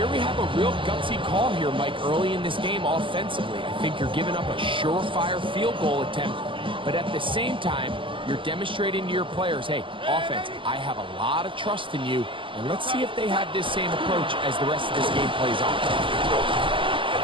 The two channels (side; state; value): left; late; 0.25 ms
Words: we have a real gutsy call here, Mike, early in this game offensively. I think you're giving up a surefire field goal attempt, but at the same time, you're demonstrating to your players, hey, offense, I have a lot of trust in you, and let's see if they have this same approach as the rest of this game plays on.